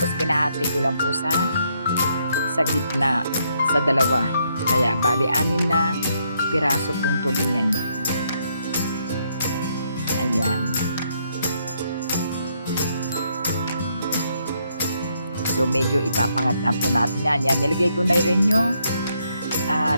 pinahati ko lang po sa gitna, sa dalawa. Kaya, bali, 6 na piraso pong tulingan. Ayan. So, medyo ipapangat na po natin yan. Yan, nilagay ko na rin yung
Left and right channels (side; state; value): both; inverted; correlation -0.74